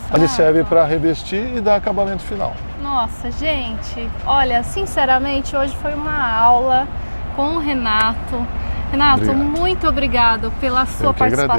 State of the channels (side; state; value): both; inverted; correlation -1.00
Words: Ele serve Rafa. para revestir e dar acabamento final. Nossa, gente, olha, sinceramente, hoje foi uma aula com o Renato. Renato, Obrigado. muito obrigado pela sua Eu que